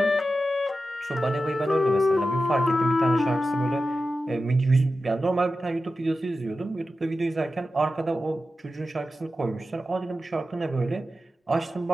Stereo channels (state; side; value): normal; both; correlation 0.92